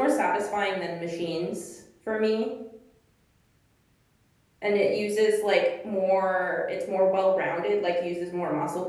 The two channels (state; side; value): identical; both; correlation 1.00